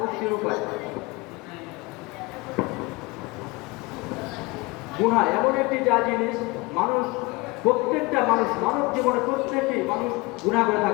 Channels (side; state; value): right; quieter; 24.5 dB